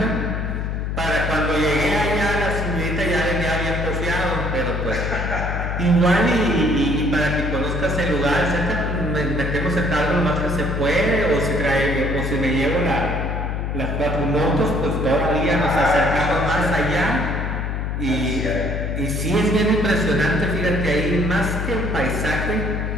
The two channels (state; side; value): noise; left; hum, 2 dB below the sound